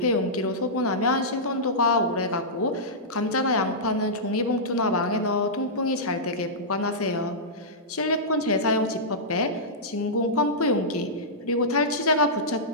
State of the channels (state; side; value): normal; both; correlation -0.14